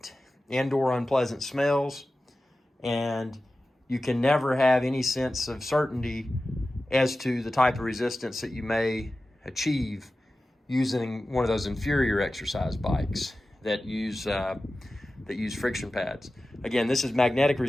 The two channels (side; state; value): both; normal; correlation 0.95